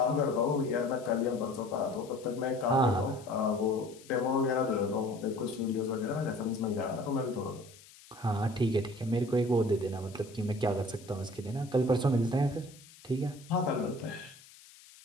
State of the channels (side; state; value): left; noise; hiss, 22 dB below the sound